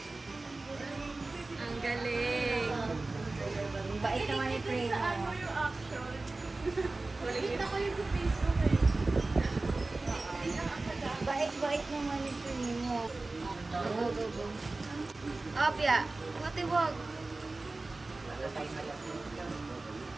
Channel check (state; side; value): quieter; left; 3.3 dB